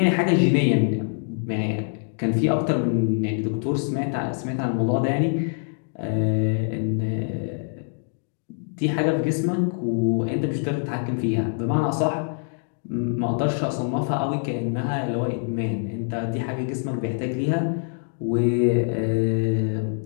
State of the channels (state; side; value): silent; right; 62 dB below the other